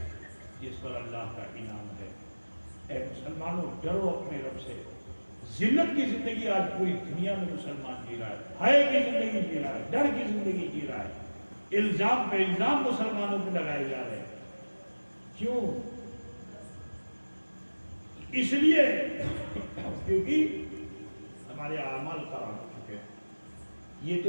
جس پر اللہ کا انعام ہے۔ اے مسلمانوں، ڈرو اپنے رب سے۔ ذلت کی زندگی آج پوری دنیا میں مسلمان جی رہا ہے، حیا کی زندگی جی رہا ہے، ڈر کی زندگی جی رہا ہے، الزام پہ الزام مسلمانوں پہ لگائے جا رہے ہیں۔ کیوں؟ اس لیے کیونکہ ہمارے اعمال خراب ہو چکے ہیں۔ یہ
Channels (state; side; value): inverted; both; correlation -1.00